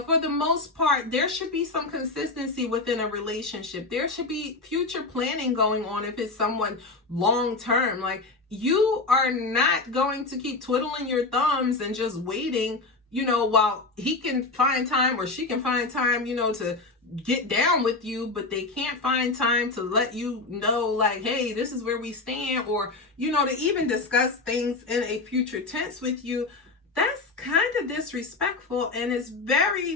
for the most part, there should be some consistency within a relationship. There should be future planning going on if it's someone long term. Like, you are not going to keep twiddling your thumbs and just waiting, while he can find time or she can find time, to get down with you, but they can't find time to let you know, like, hey, this is where we stand, or, to even discuss things in a future tense with you. That's kind of disrespectful, and it's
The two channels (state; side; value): quieter; right; 3.5 dB